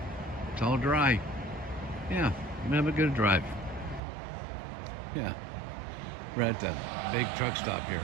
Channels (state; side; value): drops out; left; at 4.0 s